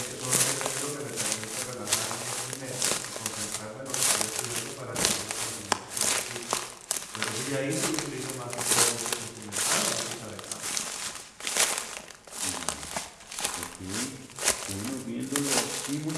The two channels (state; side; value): identical; both; correlation 1.00